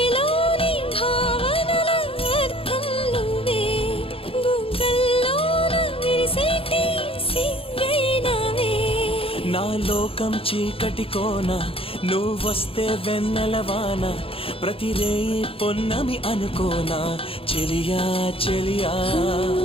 భావనల అర్థం నువ్వే, బుగ్గల్లోన విరిసేటి సిగ్గైనవే. నా లోకం చీకటి కోన, నువ్వొస్తే వెన్నెలవాన, ప్రతి రేయి పొన్నమి అనుకోనా చెలియా చెలియా.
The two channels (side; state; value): right; late; 0.27 ms